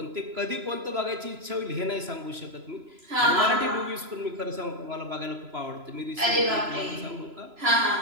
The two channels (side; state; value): left; late; 3.0 ms